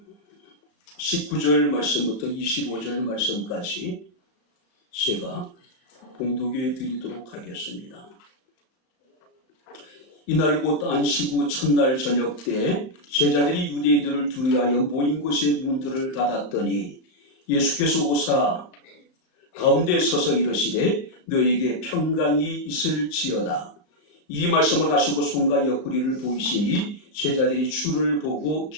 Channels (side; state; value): right; late; 34 ms